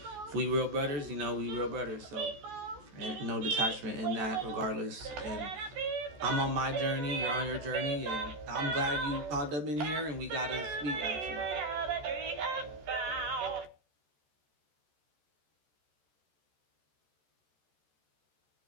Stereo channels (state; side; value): late; left; 14 ms